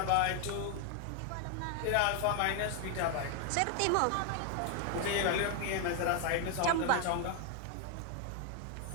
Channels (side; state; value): both; different; correlation 0.00